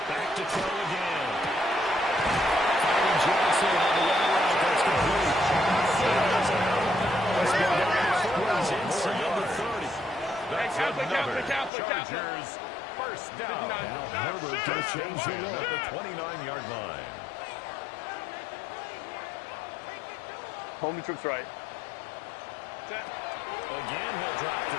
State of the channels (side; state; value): right; drops out; at 11.7 s